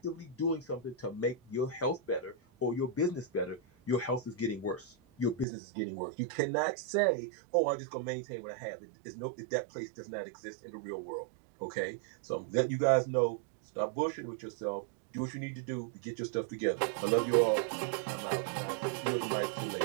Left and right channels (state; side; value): drops out; left; at 5.5 s